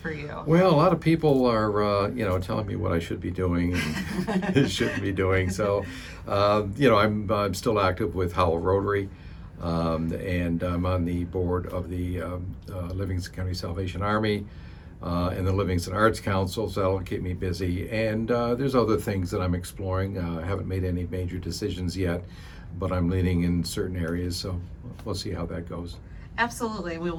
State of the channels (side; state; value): both; identical; correlation 1.00